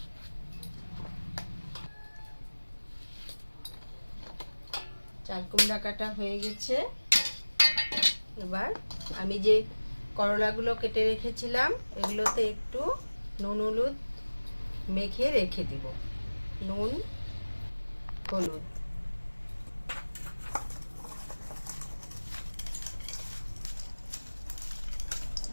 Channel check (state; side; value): inverted; both; correlation -1.00